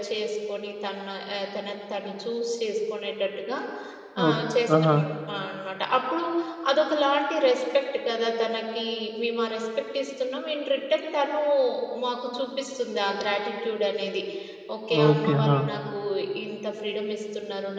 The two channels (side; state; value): both; identical; correlation 1.00